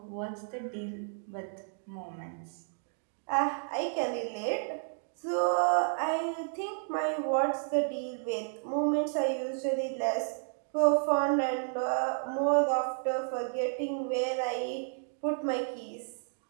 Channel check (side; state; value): left; silent; digital silence